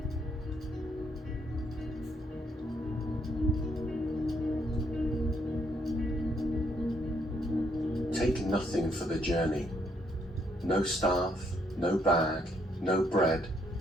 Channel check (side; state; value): both; normal; correlation 0.72